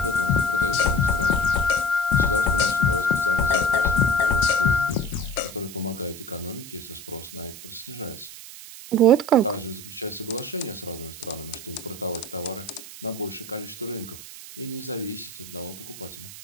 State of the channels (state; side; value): noise; right; hiss, 14 dB below the sound